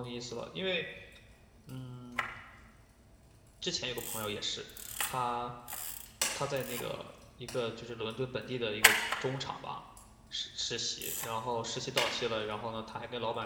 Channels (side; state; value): both; identical; correlation 1.00